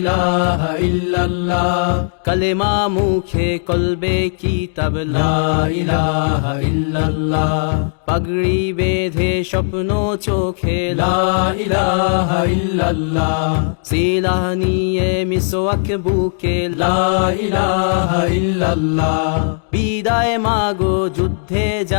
ইল্লাল্লাহ, কালেমা মুখে কলবে কিতাব লা ইলাহা ইল্লাল্লাহ, পাগড়ি বেঁধে স্বপ্ন চোখে লা ইলাহা ইল্লাল্লাহ, সিলাহ নিয়ে মিসওয়াক বুকে লা ইলাহা ইল্লাল্লাহ, বিদায় মাগো যুদ্ধে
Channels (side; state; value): right; silent; digital silence